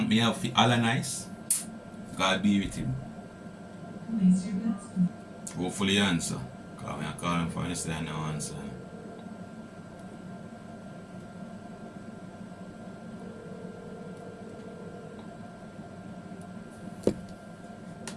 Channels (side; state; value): both; identical; correlation 1.00